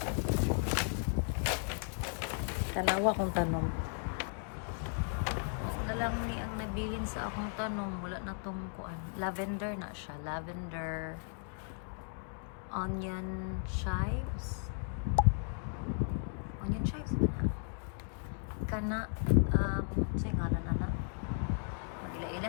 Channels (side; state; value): right; silent; 54 dB below the other